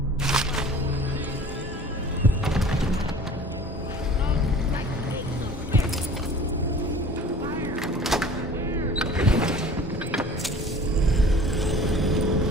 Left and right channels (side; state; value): both; normal; correlation 0.45